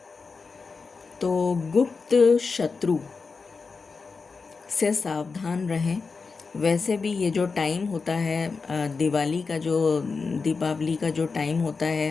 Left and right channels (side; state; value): right; quieter; 4.6 dB